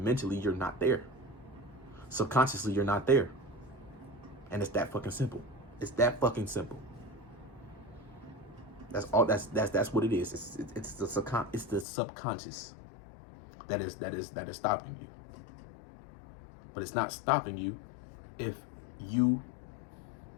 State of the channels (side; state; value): right; drops out; at 11.9 s